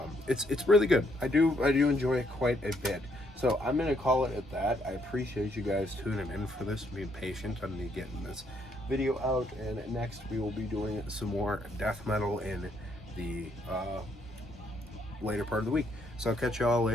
It's really good. I do enjoy it quite a bit. So I'm gonna call it at that. I appreciate you guys tuning in for this, being patient on me getting this video out, and next we will be doing some more death metal in the later part of the week. So I'll catch y'all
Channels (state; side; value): normal; both; correlation 0.72